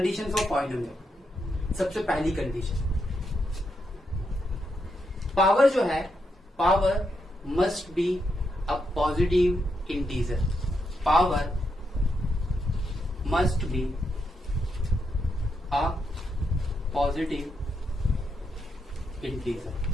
for polynomial. सबसे पहली कंडीशन, पावर जो है, power must be a positive integer, power must be a positive integer.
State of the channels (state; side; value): normal; both; correlation 0.82